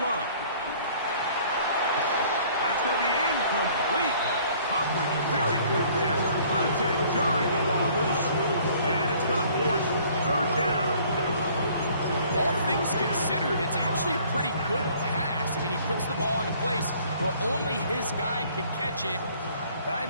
That's going to be incomplete. Coverage very good there. Contact jarring the ball loose. And it's going to force 3rd down. All things considered, it's actually a pretty good pass. I mean, he puts the ball in a place where only his guy can catch it. But I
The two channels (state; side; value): inverted; both; correlation -0.56